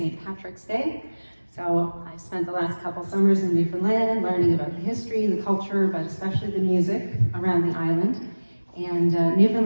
Patrick's Day. So I've spent the last couple summers in Newfoundland learning about the history, the culture, but especially the music around the island. And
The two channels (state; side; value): inverted; both; correlation -1.00